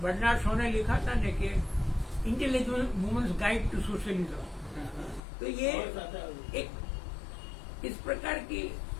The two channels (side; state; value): right; drops out; at 5.2 s